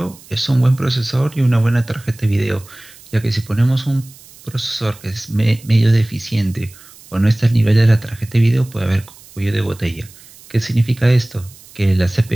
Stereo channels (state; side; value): noise; right; hiss, 23 dB below the sound